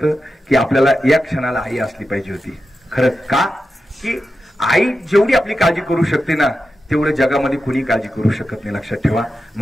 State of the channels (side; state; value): both; normal; correlation 0.90